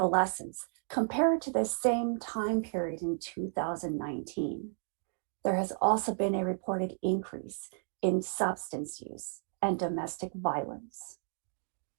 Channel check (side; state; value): left; silent; 56 dB below the other